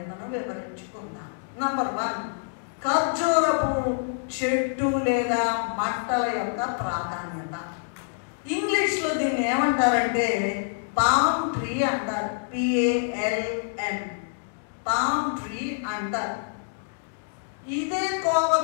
వివరించుకుందాం. నంబర్ 1 ఖర్జూరపు చెట్టు లేదా మంటల యొక్క ప్రాధాన్యత. ఇంగ్లీష్లో దీన్ని ఏమంటారంటే పామ్ ట్రీ అంటారు. PALM పామ్ ట్రీ అంటారు. ఇదే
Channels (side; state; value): right; silent; digital silence